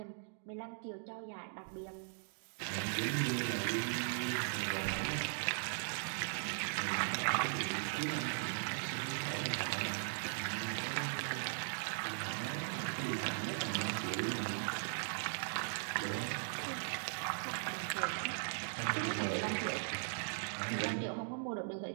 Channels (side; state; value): left; silent; digital silence